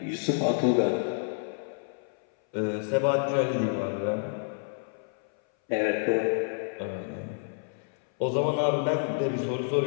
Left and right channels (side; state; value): right; silent; 59 dB below the other